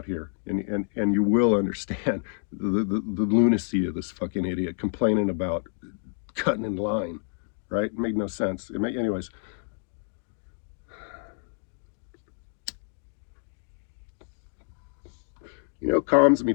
here, and you will understand the lunacy of this fucking idiot complaining about cutting in line, right? It made no sense. Anyways. You know, calms me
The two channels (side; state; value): right; silent; 56 dB below the other